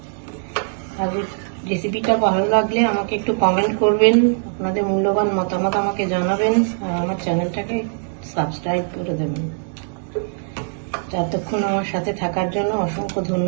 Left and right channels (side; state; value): left; silent; digital silence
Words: আর রেসিপিটা ভালো লাগলে আমাকে একটু কমেন্ট করবেন, আপনাদের মূল্যবান মতামত আমাকে জানাবেন, আর আমার চ্যানেলটাকে সাবস্ক্রাইব করে দেবেন। যতক্ষণ আমার সাথে থাকার জন্য অসংখ্য